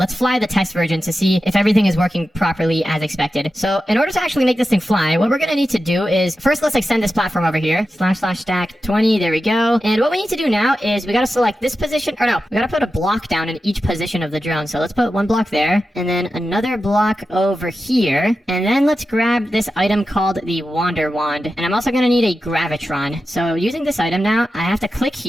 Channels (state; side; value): normal; both; correlation 0.91